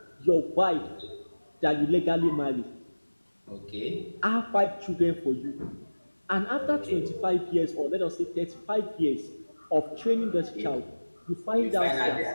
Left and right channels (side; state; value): both; inverted; correlation -1.00